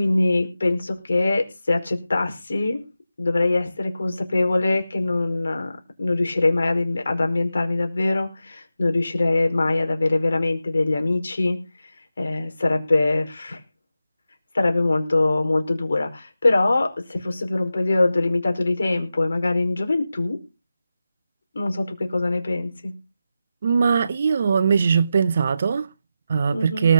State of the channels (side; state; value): both; inverted; correlation -0.91